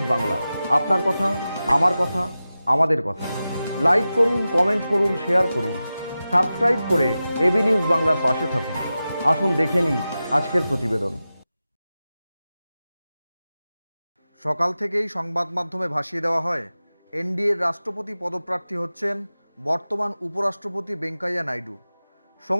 বাংলা, আপনার কথা, আমার কথা, আমাদের কথা। লাইক করুন, কমেন্ট করুন, শেয়ার করুন, সাবস্ক্রাইব করে এবি নিউজ বাংলার পাশে থাকুন। আসুন দেখে নিই আজকের প্রতিবেদন। সকাল থেকেই সংবাদ মাধ্যমে ভাসিয়ে দেওয়া হয়, এনডিএর রাষ্ট্রপতি পদপ্রার্থী হচ্ছেন বর্তমান উপরাষ্ট্রপতি ভেঙ্কাইয়া নাইডু।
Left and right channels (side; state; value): both; inverted; correlation -0.94